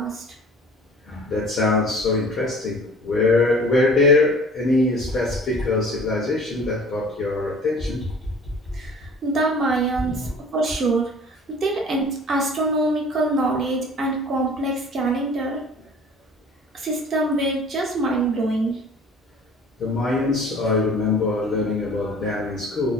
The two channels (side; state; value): both; normal; correlation 0.47